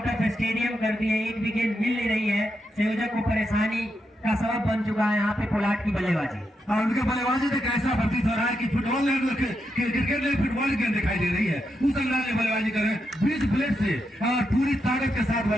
ऑफ स्टेडियम कर दिए। एक विकेट मिल नहीं रही है, संयोजक को परेशानी का सबब बन चुका है यहाँ पे पोलार्ड की बल्लेबाजी। और उनके बल्लेबाजी से कैसा प्रतीत हो रहा है कि फुटबॉल क्रिकेट में फुटबॉल गेंद दिखाई दे रही है। उस अंदाज में बल्लेबाजी कर रहे हैं, बीच प्लेट से और पूरी ताकत के साथ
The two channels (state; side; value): normal; both; correlation 0.84